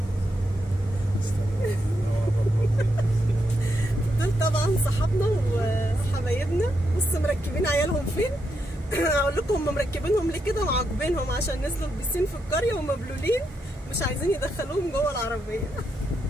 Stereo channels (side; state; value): both; normal; correlation 0.82